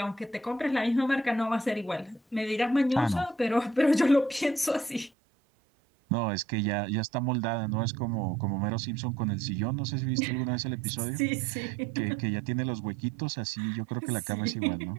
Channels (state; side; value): drops out; left; at 5.1 s